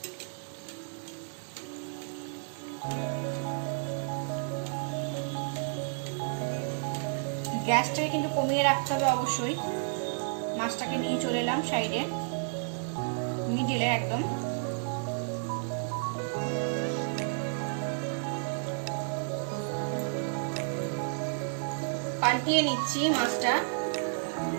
গ্যাসটাকে কিন্তু কমিয়ে রাখতে হবে অবশ্যই। মাছটাকে নিয়ে চলে এলাম সাইডে, মিডিলে একদম। পাল্টিয়ে নিচ্ছি মাছটা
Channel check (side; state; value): left; silent; 57 dB below the other